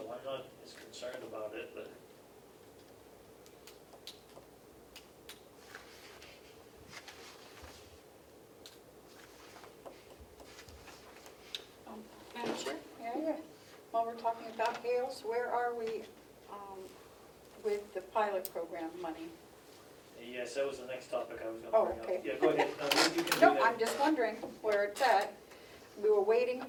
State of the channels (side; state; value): both; identical; correlation 1.00